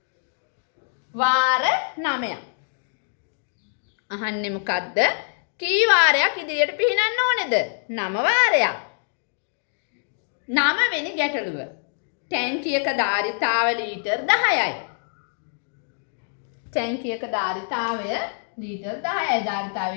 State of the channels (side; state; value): right; silent; digital silence